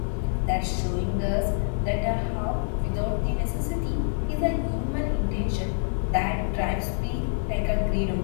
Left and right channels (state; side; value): silent; right; digital silence